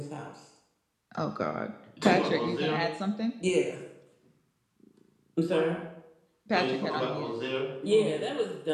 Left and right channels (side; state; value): both; identical; correlation 1.00